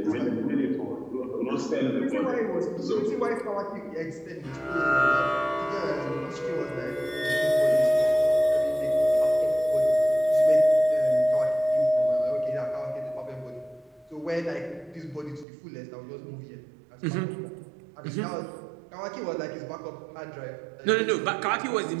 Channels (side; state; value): left; drops out; at 15.5 s